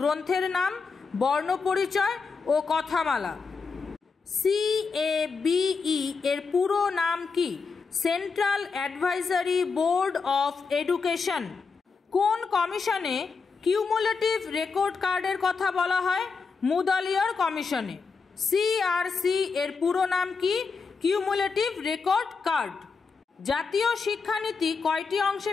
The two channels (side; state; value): right; quieter; 4.9 dB